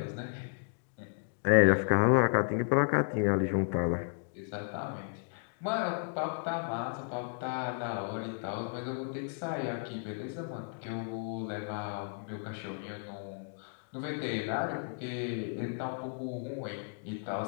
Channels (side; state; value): right; silent; digital silence